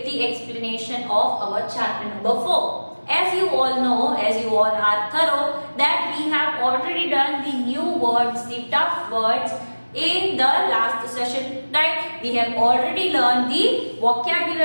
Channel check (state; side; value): inverted; both; correlation -1.00